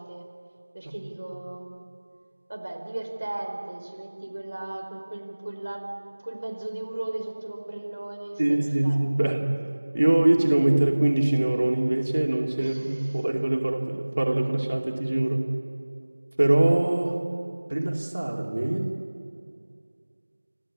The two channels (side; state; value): both; inverted; correlation -1.00